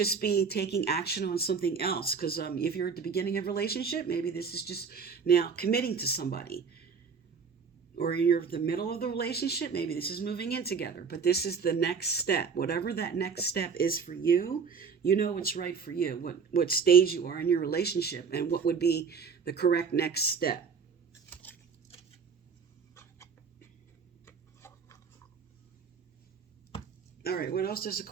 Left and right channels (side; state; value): left; quieter; 5.9 dB